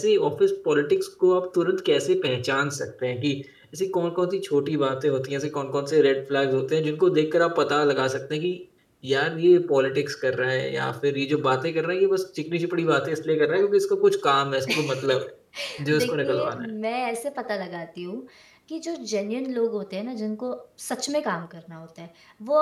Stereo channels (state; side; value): identical; both; correlation 1.00